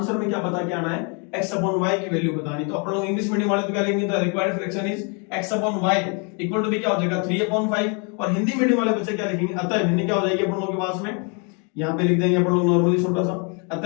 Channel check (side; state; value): right; quieter; 35.5 dB